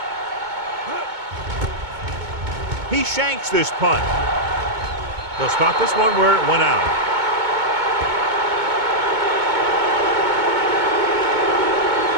He shanks this punt. They'll start this one where it went out.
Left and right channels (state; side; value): late; left; 2.2 ms